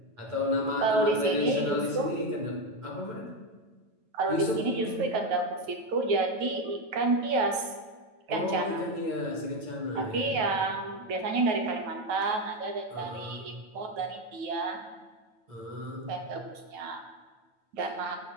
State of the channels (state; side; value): late; left; 9.1 ms